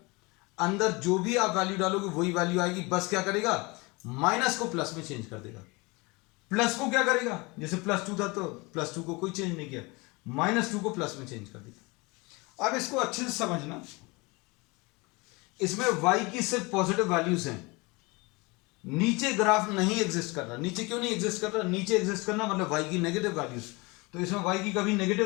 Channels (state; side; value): quieter; right; 25.8 dB